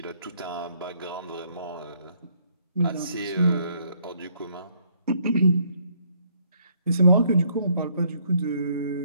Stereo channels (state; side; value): inverted; both; correlation -0.67